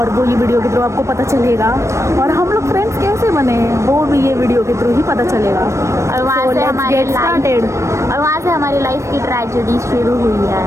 वो ये वीडियो के थ्रू आपको पता चलेगा। और हम लोग फ्रेंड्स कैसे बने वो भी ये वीडियो के थ्रू ही पता चलेगा। और वहाँ से हमारी लाइफ की ट्रेजेडी शुरू हुई है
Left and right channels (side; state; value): left; late; 0.14 ms